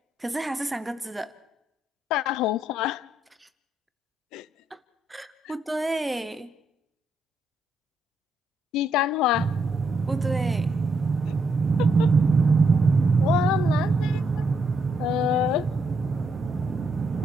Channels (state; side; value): normal; both; correlation 0.76